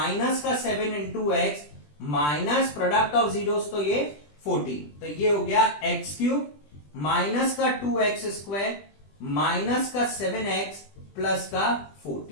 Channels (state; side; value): late; right; 20 ms